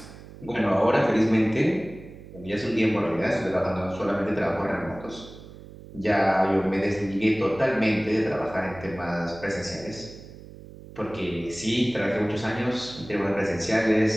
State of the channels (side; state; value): right; noise; hum, 17 dB below the sound